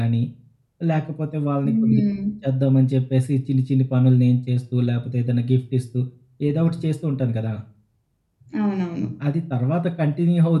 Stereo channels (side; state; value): both; identical; correlation 1.00